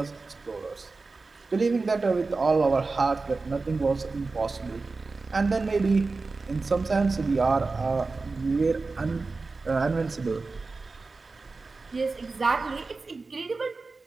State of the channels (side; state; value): left; quieter; 3.9 dB